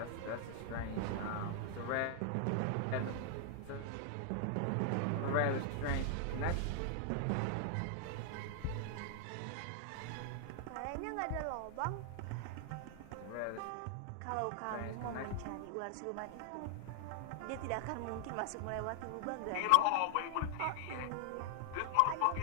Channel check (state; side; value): different; both; correlation 0.00